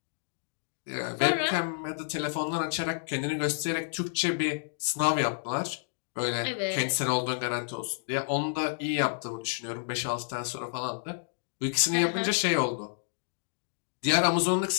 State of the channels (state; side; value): silent; right; digital silence